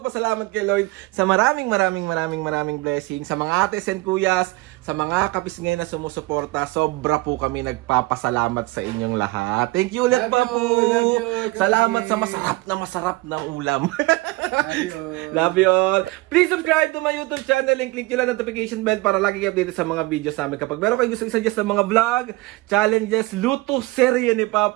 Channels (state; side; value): quieter; left; 21.6 dB